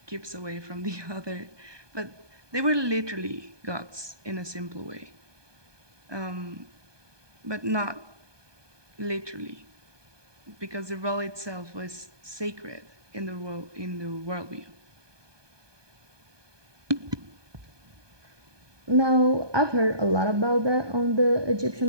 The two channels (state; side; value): late; left; 1.2 ms